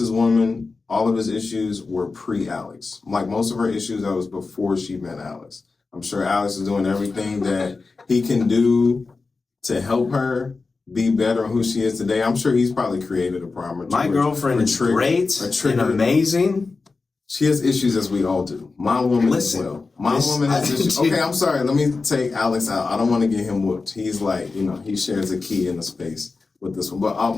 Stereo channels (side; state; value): right; quieter; 4.1 dB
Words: woman, all of his issues were pre-Alex. Like most of her issues, that was before she met Alex. I'm sure Alex is doing everything that he can do to help her be better on who she is today. I'm sure he's probably created a problem. My girlfriend is great and amazing. She has issues as we all do. My woman as well. My woman has issues. Okay, I'm sorry. Let me take Alex out. I don't want to get him whooped. He's like, he shares a key in the space with this one. But